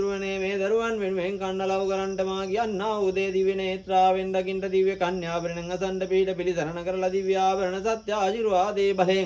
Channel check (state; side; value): identical; both; correlation 1.00